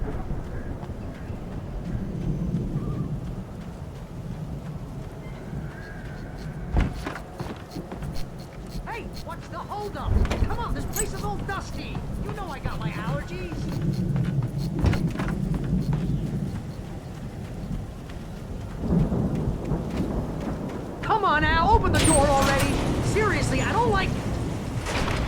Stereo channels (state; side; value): identical; both; correlation 1.00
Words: Hey, what's the holdup? Come on, this place is all dusty. You know I got my allergies. Come on, Al, open the door already. Seriously, I don't like...